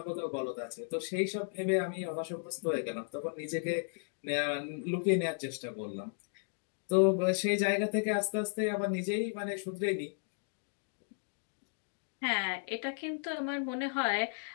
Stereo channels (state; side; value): silent; right; digital silence